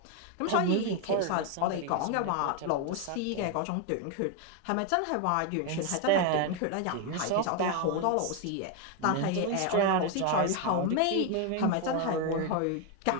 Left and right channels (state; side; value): different; both; correlation 0.01